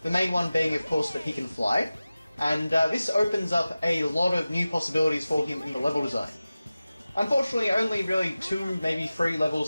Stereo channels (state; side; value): inverted; both; correlation -0.96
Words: the main one being of course that he can fly, and this opens up a lot of new possibilities for him in the level design. Unfortunately only really 2, maybe 3